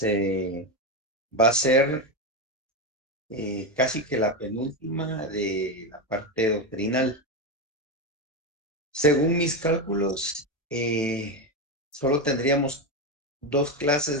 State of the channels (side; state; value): both; normal; correlation 0.13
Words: va a ser casi que la penúltima de la parte doctrinal. Según mis cálculos, solo tendríamos dos clases